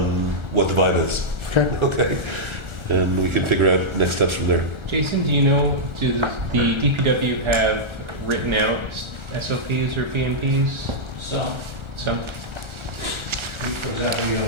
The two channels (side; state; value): left; late; 1.4 ms